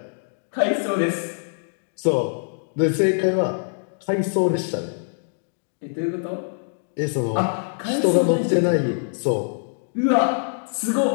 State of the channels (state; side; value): silent; right; digital silence